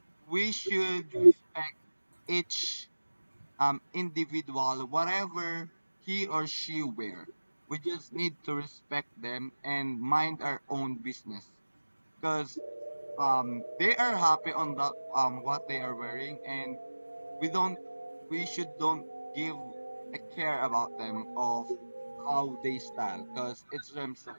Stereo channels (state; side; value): inverted; both; correlation -1.00